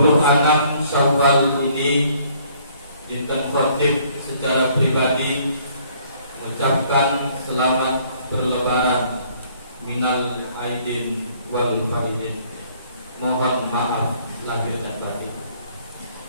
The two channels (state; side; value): inverted; both; correlation -0.61